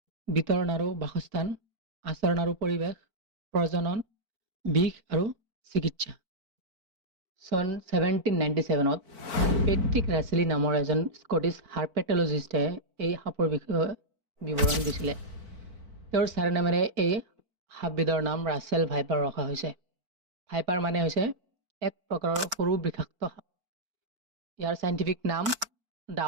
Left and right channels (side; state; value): left; late; 4.5 ms